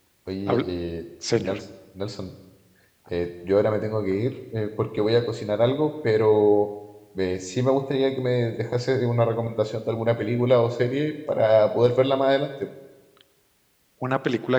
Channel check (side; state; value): both; identical; correlation 1.00